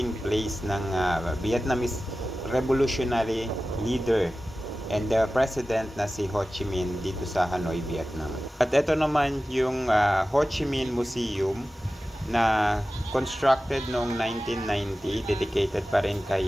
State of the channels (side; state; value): both; normal; correlation 0.95